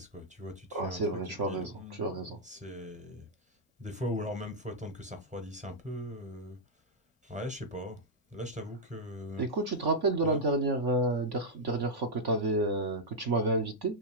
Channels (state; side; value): normal; both; correlation -0.04